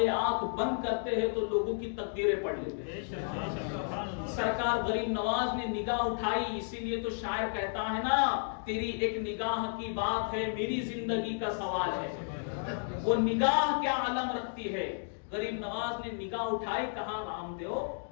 آنکھ بند کرتے ہیں تو لوگوں کی تقدیریں پڑھ لیتے ہیں. سرکار غریب نواز نے نگاہ اٹھائی. اسی لیے تو شاعر کہتا ہے نا، تیری ایک نگاہ کی بات ہے، میری زندگی کا سوال ہے. وہ نگاہ کیا علم رکھتی ہے. غریب نواز نے نگاہ اٹھائی. کہا رام دیو،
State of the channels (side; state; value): right; silent; digital silence